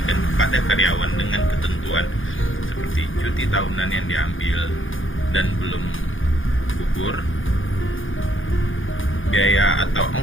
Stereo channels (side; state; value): right; late; 0.58 ms